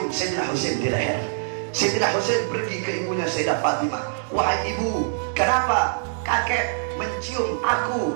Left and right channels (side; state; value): left; silent; digital silence